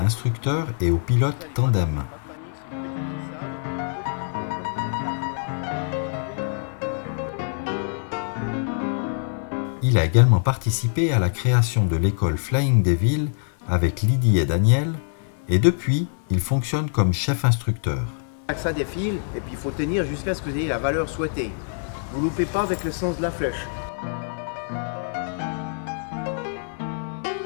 et aux pilotes tandem. Il a également participé à la création de l'école Flying Devil avec Lydie et Daniel, et depuis, il fonctionne comme chef instructeur. Ça défile et puis il faut tenir jusqu'à ce que vous ayez la valeur souhaitée. Vous ne loupez pas avec le sens de la flèche.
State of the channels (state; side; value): silent; right; 56 dB below the other